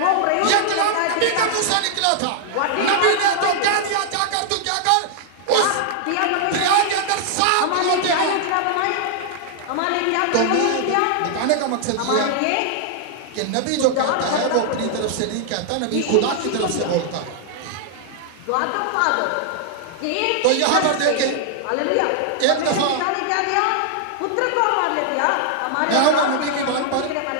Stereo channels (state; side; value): different; both; correlation -0.01